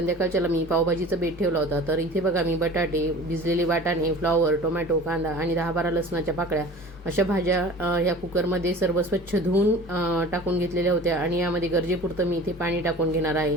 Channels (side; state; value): both; normal; correlation 0.41